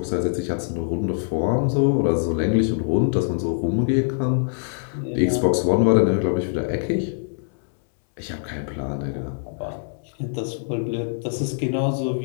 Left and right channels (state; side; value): silent; right; 62 dB below the other